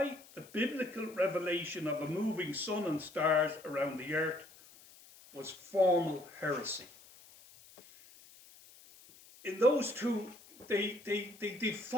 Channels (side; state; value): left; noise; hiss, 23 dB below the sound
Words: the biblical revelation of a moving sun and stars around the earth was formal heresy. In those two, they